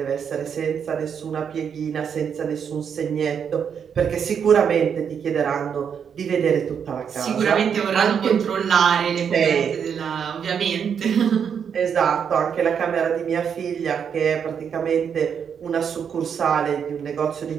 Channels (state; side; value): quieter; left; 7.4 dB